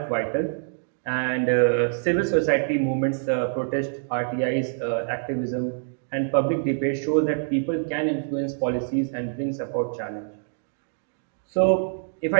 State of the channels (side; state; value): left; silent; digital silence